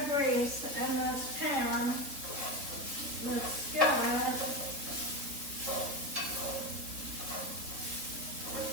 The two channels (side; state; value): left; late; 3.9 ms